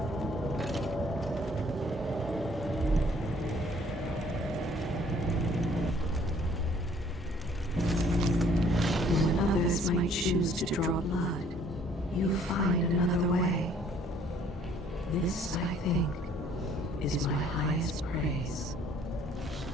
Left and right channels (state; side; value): normal; both; correlation 0.59